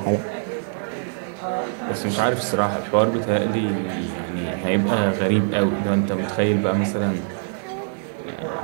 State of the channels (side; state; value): left; silent; digital silence